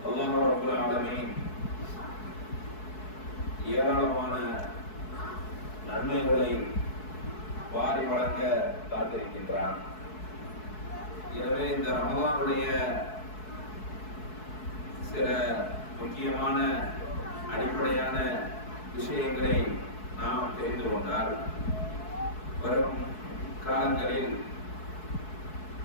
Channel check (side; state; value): right; late; 4.6 ms